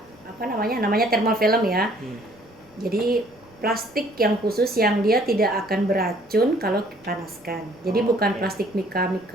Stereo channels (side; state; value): left; noise; rumble, 30 dB below the sound